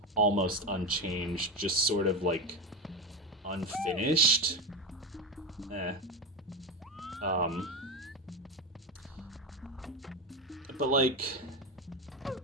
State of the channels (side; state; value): both; normal; correlation 0.17